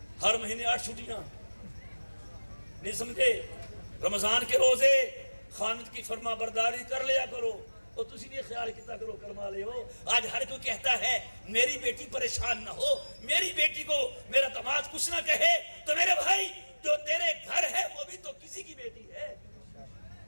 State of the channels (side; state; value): both; inverted; correlation -1.00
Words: ہر مہینے 8 چھٹیاں، نہیں سمجھے؟ رمضان کے روزے خامد کی فرما برداری کر لیا کرو، اور تسی بھی خیال کیتا کرو کرما لے ہو۔ آج ہر کوئی کہتا ہے میری بیٹی پریشان نہ ہو، میری بیٹی کو میرا داماد کچھ نہ کہے، تو میرے بھائی جو تیرے گھر ہے وہ بھی تو کسی کی بیٹی ہے،